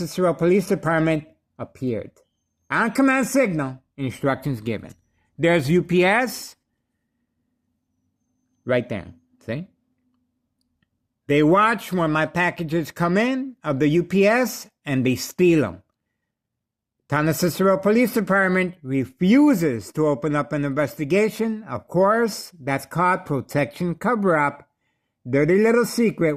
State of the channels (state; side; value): identical; both; correlation 1.00